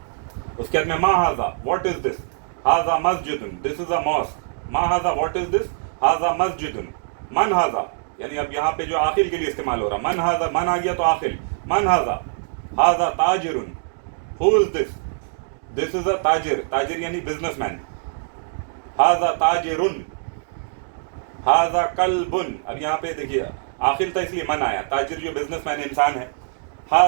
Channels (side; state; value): left; silent; digital silence